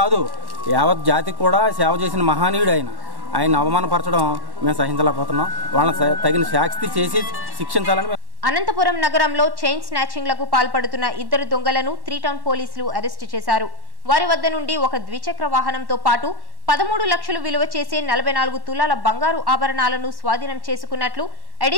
యావత్ జాతికి కూడా సేవ చేసిన మహానీయుడు ఆయన అవమానపరచడం మేము సహించలేకపోతున్నాం. వాళ్ళని తగిన శాస్తి చేసి శిక్షించాలని. అనంతపురం నగరంలో చైన్ స్నాచింగ్లకు పాల్పడుతున్న 2 దొంగలను 3 టౌన్ పోలీసులు అరెస్టు చేశారు. వారి వద్ద నుండి ఒక ద్విచక్ర వాహనంతో పాటు 13 లక్షలు విలువ చేసే 44 తులాల బంగారు ఆభరణాలను స్వాధీనం చేసుకున్నట్లు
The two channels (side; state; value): left; late; 1.1 ms